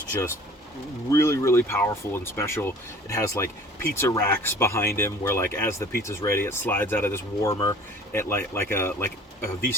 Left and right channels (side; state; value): both; normal; correlation 0.47